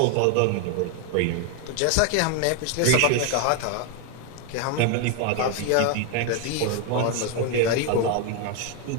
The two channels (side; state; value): both; different; correlation 0.01